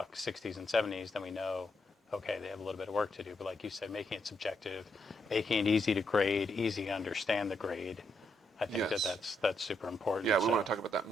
60s and 70s, then we know, okay, they have a little bit of work to do. But like you said, making it subjective, making it easy to grade, easy to understand the grade. I think Yes. that's super important. Yeah, we want to talk about that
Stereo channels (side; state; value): both; normal; correlation 0.79